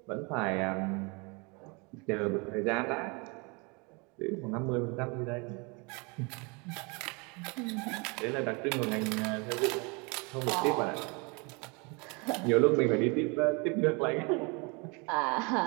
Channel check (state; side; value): quieter; left; 30.2 dB